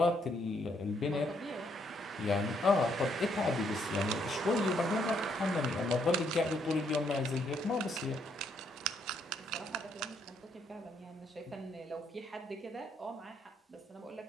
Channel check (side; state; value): both; normal; correlation 0.72